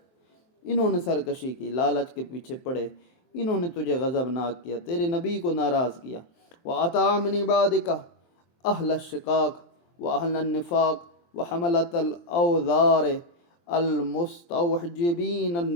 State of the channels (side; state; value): right; late; 23 ms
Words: انہوں نے سرکشی کی، لالچ کے پیچھے پڑے، انہوں نے تجھے غضبناک کیا، تیرے نبی کو ناراض کیا۔ وَأَطَاعَ مِنْ عِبَادِكَ أَهْلَ الشِّقَاقِ وَأَهْلَ النِّفَاقِ وَحَمَلَةَ الْأَوْزَارِ المستوجبین